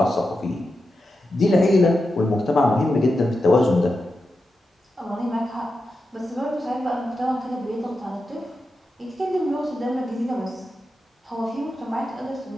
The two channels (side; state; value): both; normal; correlation 0.89